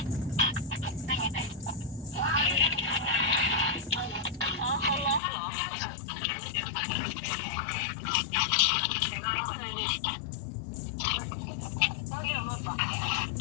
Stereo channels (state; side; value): drops out; right; at 5.2 s